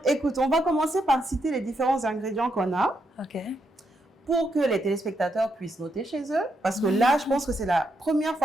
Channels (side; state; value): both; normal; correlation 0.80